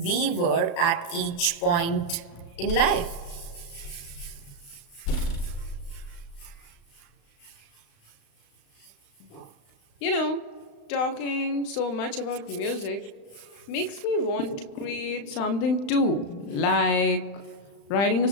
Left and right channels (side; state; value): right; late; 35 ms